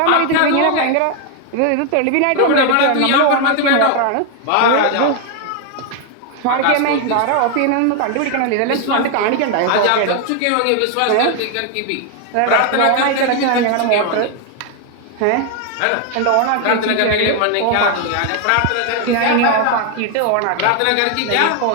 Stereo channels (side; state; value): both; different; correlation 0.00